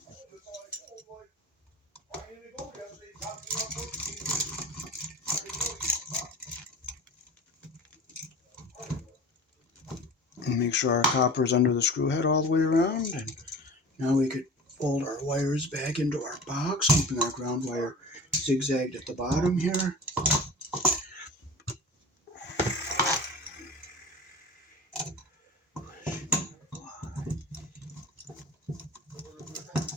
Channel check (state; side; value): normal; both; correlation 0.37